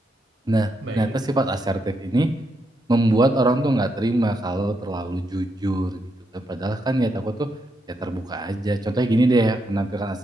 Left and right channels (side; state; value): both; normal; correlation 0.80